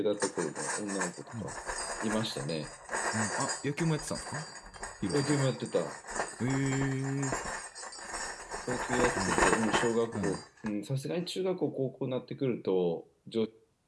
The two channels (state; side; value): identical; both; correlation 1.00